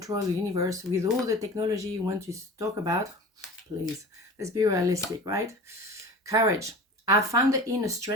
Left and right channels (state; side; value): normal; both; correlation 0.37